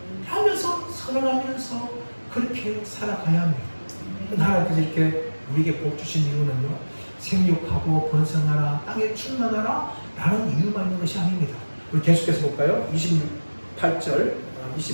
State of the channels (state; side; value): inverted; both; correlation -1.00